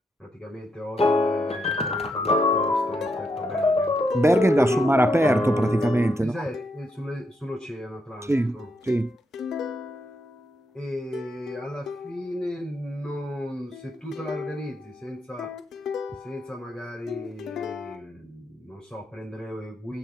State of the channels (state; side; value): normal; both; correlation 0.80